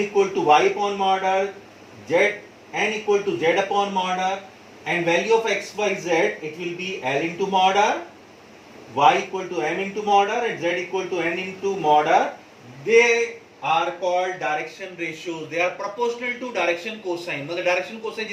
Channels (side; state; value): both; identical; correlation 1.00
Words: to y upon mod r, n equal to z upon mod r, and value of x, y, z, it will be L into mod r, y equal to m into mod r, and z equal to n into mod r. They are called direction ratios. They are proportional to direction cosine. मतलब direction cosine